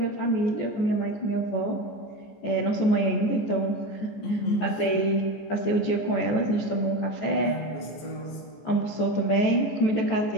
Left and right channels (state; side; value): late; right; 14 ms